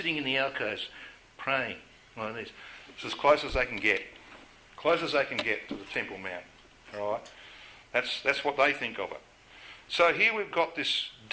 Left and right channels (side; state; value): both; identical; correlation 1.00